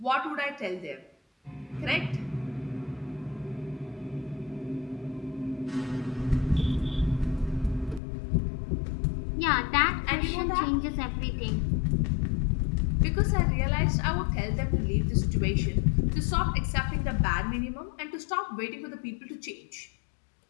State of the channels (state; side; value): drops out; right; at 8.0 s